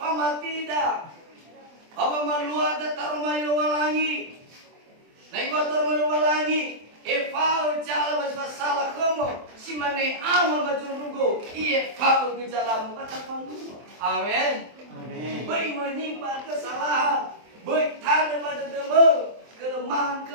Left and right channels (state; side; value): late; left; 24 ms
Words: tidak. Apa maluat taruh malu walangi. Naik batur maluwalangi, fau jala baswa salah kamu, si mane amal baju rugo, fau bijalamu kata palu. Amin. Amin. Baik menyimpan kesalahan, baik tanda pada demo,